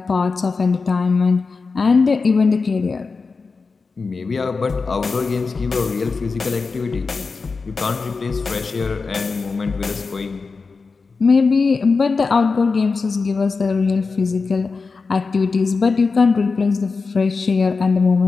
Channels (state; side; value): quieter; right; 4.5 dB